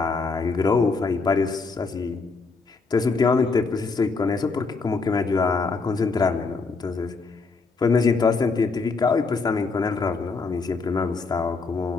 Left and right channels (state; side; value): quieter; right; 4.3 dB